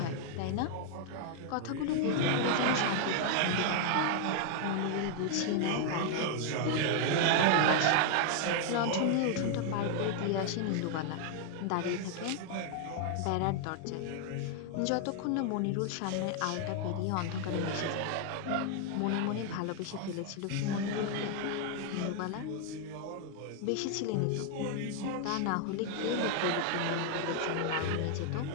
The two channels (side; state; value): both; different; correlation 0.00